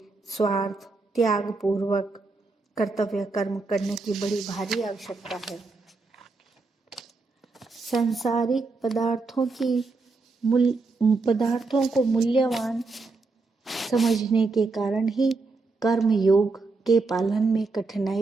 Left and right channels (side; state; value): left; quieter; 3.8 dB